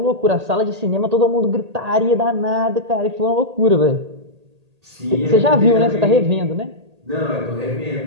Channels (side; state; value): left; late; 1.8 ms